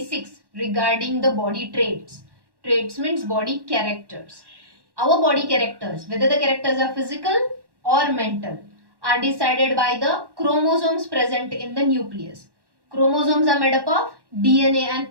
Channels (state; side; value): late; left; 1.1 ms